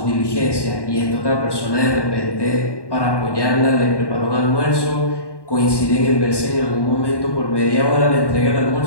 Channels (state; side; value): late; right; 1.1 ms